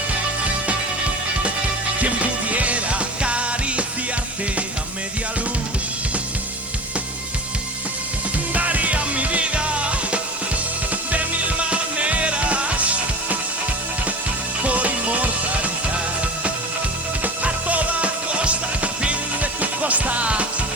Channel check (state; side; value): normal; both; correlation 0.33